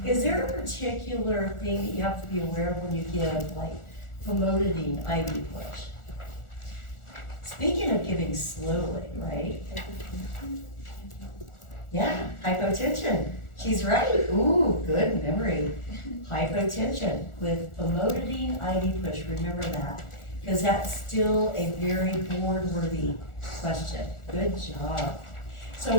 Is there a particular thing that you have to be aware of when you give, like, famotidine IV push? Speaking of giving slowly, right? Yeah, hypotension. She's right. Ooh, good memory. Hypotension with famotidine IV push. Remember that, because that's still a very board-worthy question. Good job. So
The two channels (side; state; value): right; late; 1.4 ms